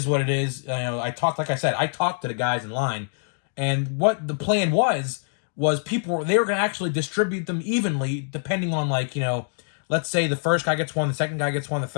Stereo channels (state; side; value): silent; right; digital silence